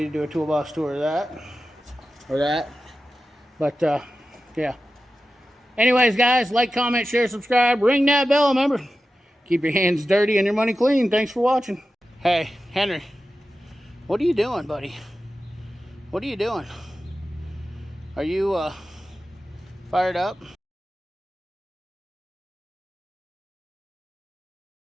to do a toolbox tour of that or that. But yeah, anyways, guys, like, comment, share, subscribe, ring that bell. Remember, keep your hands dirty and your money clean. Thanks for watching. Hey Henry, what are you doing, buddy? What are you doing? Are you fired up?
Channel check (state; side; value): normal; both; correlation 0.93